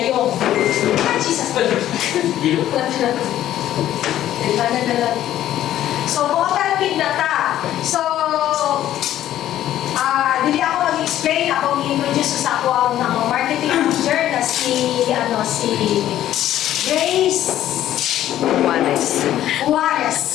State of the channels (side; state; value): right; quieter; 12.5 dB